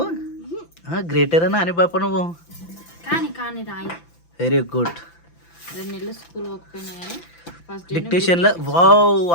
గ్రేటరేనా అని పాప నువ్వు? Very good. 2 నెలలు స్కూల్ పోకపోయినా కానీ డిక్టేషన్లో వావ్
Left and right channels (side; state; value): right; late; 5.9 ms